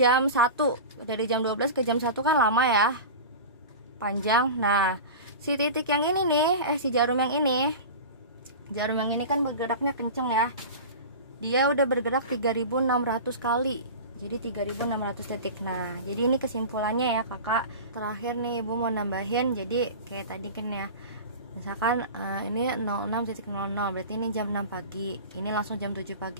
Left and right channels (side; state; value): both; inverted; correlation -0.31